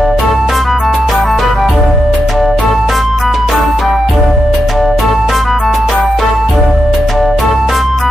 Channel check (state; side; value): normal; both; correlation 0.86